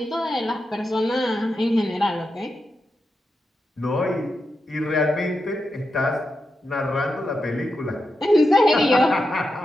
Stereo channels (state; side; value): normal; both; correlation 0.87